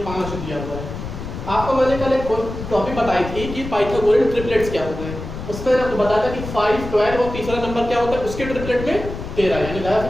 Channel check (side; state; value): left; noise; rumble, 9 dB below the sound